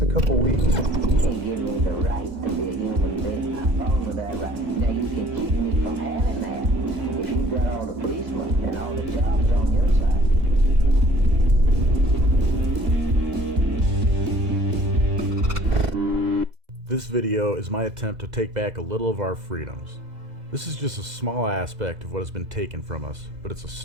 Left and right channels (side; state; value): left; late; 2.0 ms